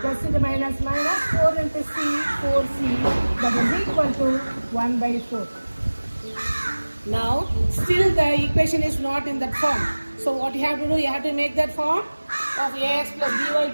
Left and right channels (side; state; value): both; inverted; correlation -1.00